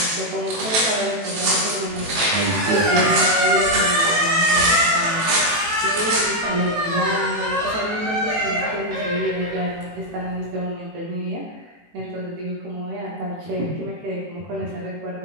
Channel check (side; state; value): left; late; 18 ms